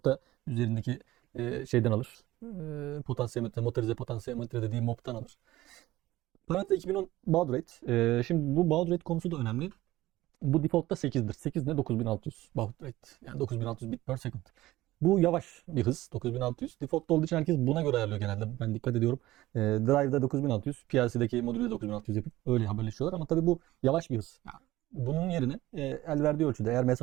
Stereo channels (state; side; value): quieter; left; 16.8 dB